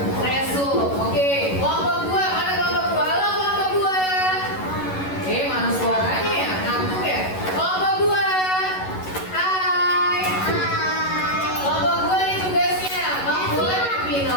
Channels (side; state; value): right; late; 11 ms